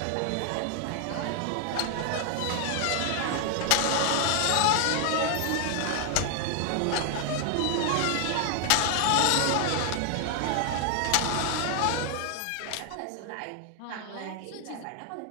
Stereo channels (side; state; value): both; different; correlation 0.00